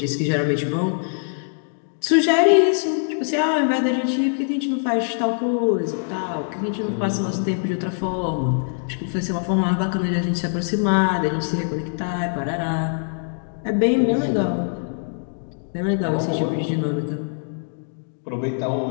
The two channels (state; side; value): silent; right; digital silence